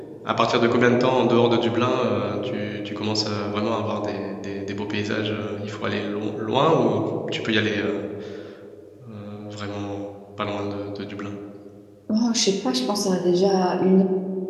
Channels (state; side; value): identical; both; correlation 1.00